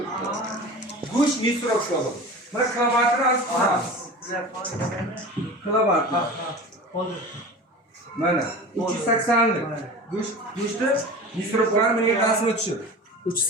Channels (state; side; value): normal; both; correlation 0.34